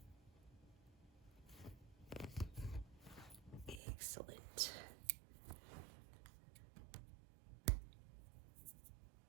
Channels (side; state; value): left; drops out; at 3.8 s